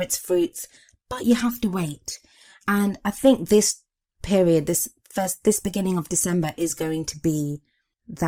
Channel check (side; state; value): both; identical; correlation 1.00